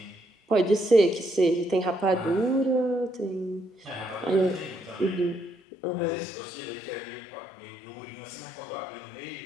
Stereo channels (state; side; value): drops out; right; at 5.6 s